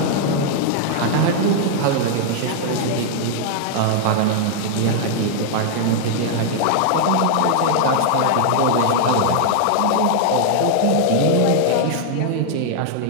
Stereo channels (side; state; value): both; different; correlation 0.00